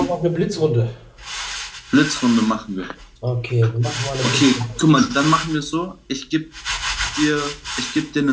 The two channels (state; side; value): identical; both; correlation 1.00